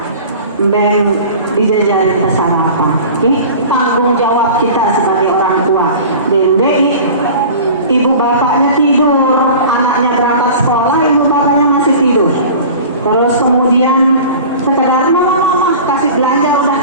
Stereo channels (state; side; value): inverted; both; correlation -0.39